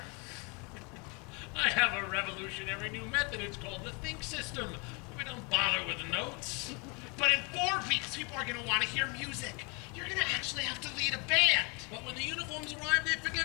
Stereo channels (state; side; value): quieter; right; 31.2 dB